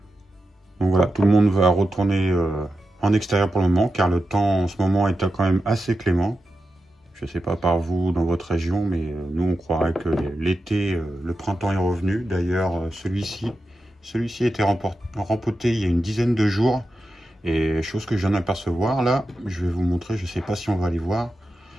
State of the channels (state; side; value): normal; both; correlation 0.90